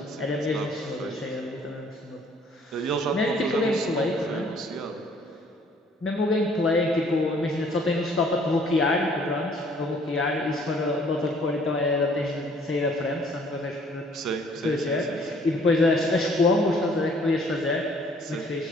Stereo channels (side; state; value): both; normal; correlation 0.59